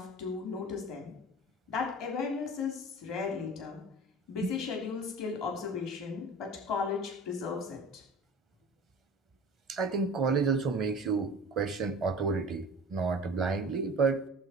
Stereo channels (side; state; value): both; normal; correlation 0.39